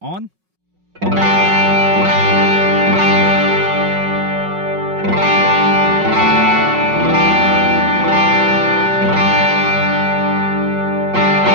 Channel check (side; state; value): left; late; 5.4 ms